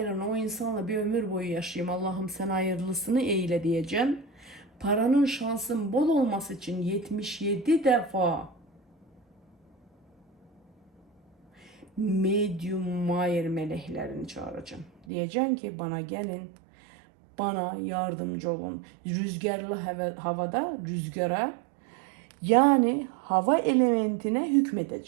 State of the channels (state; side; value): drops out; left; at 14.9 s